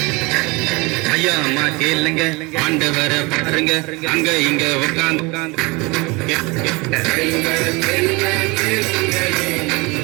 ஐயா அம்மா கேளுங்க, ஆண்டவரை பாருங்க, அங்க இங்க உட்காந்து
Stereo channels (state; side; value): quieter; left; 25.7 dB